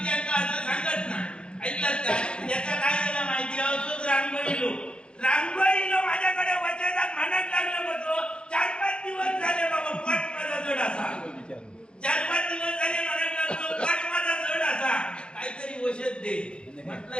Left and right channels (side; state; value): right; late; 0.054 ms